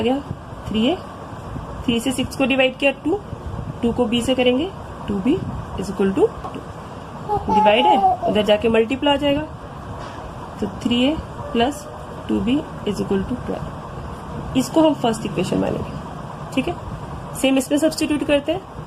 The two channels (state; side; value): identical; both; correlation 1.00